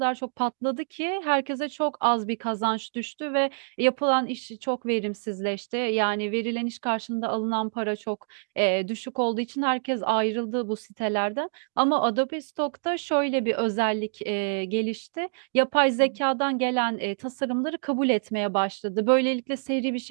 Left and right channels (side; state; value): left; silent; digital silence